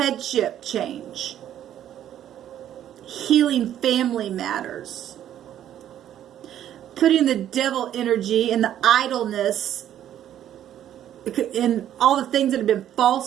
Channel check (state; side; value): quieter; left; 11.0 dB